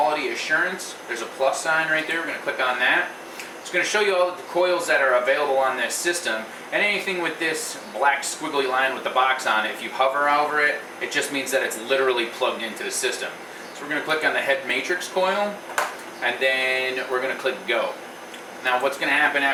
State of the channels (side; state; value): both; identical; correlation 1.00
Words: Assurance. There's a plus sign right there. We're going to click on that. It's going to show you all of the coils that are available on this system, and anything with this black squiggly line with the box on it, if you hover over it, it just means that it's literally plugged into the system. So we're going to click on the head matrix coil, and then we're going to click Go. Now what's going to happen